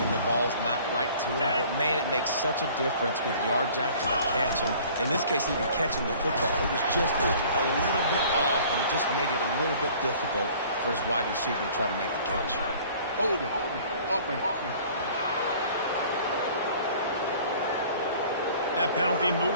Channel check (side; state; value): both; inverted; correlation -0.50